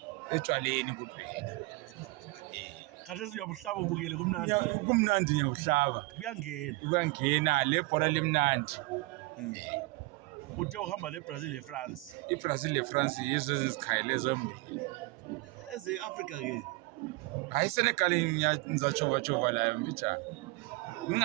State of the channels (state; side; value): quieter; left; 23.4 dB